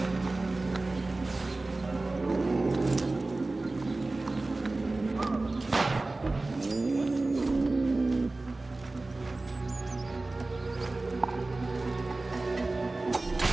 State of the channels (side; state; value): left; quieter; 3.1 dB